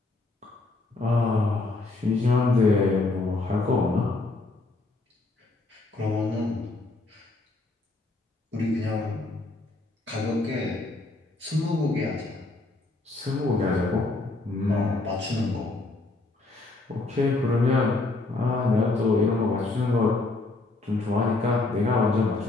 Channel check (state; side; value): quieter; right; 3.2 dB